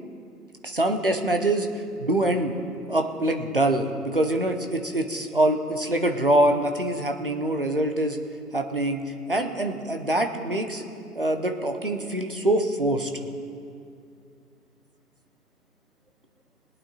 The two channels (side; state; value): both; normal; correlation 0.52